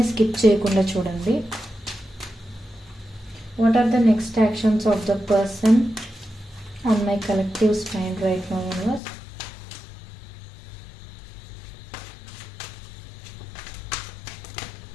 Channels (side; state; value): right; drops out; at 9.0 s